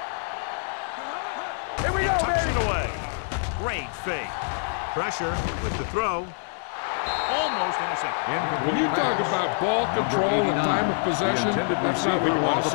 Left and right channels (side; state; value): right; silent; 61 dB below the other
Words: He tucks it away. Great fake. Pressure with the throw. Almost intercepted. When you talk about ball control and time of possession, that's not what you want to